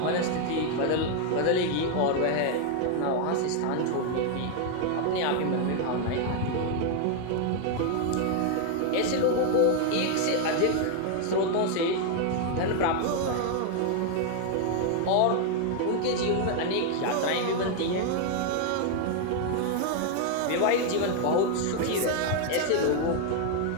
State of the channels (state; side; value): different; both; correlation 0.00